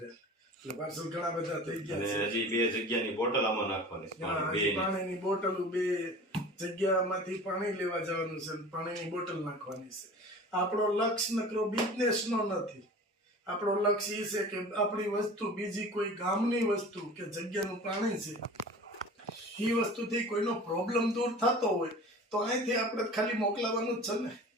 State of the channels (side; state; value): both; normal; correlation 0.40